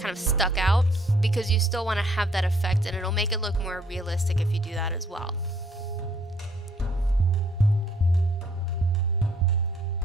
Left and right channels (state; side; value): normal; both; correlation 0.64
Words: of stuck out, because you still want to have that effect, and it'll make it look more realistic if you do that as well.